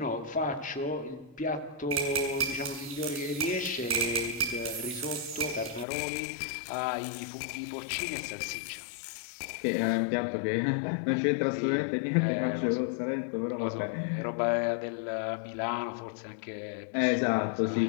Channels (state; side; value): drops out; right; at 5.9 s